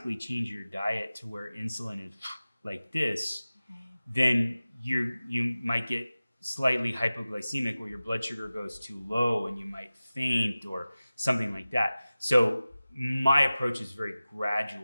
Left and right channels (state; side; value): inverted; both; correlation -0.96